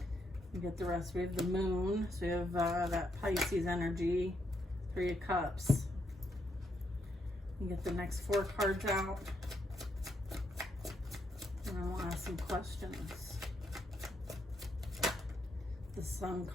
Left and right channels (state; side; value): normal; both; correlation 0.77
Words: We get the rest. We have the Moon. So we have that Pisces energy. 3 of Cups. You get the next 4 cards out. And I will ask some questions. The Sun